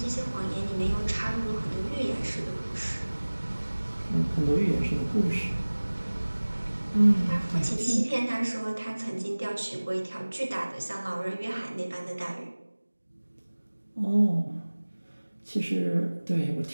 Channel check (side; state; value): both; inverted; correlation -1.00